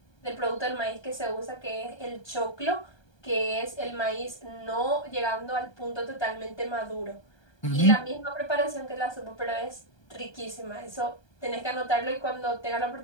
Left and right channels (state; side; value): late; right; 1.3 ms